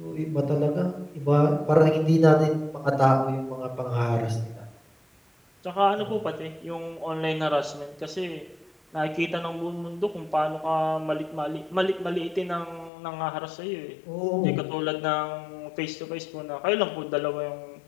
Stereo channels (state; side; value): drops out; right; at 12.9 s